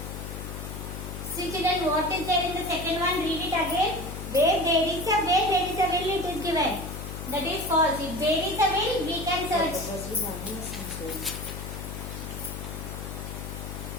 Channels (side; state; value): left; noise; hum, 7 dB below the sound